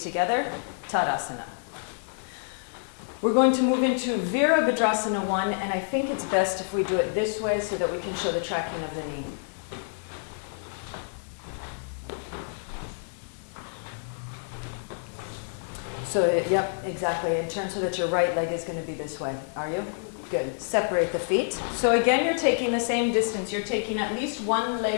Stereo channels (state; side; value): silent; right; 59 dB below the other